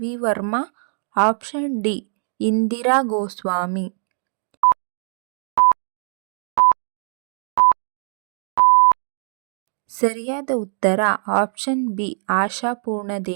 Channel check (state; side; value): silent; left; 63 dB below the other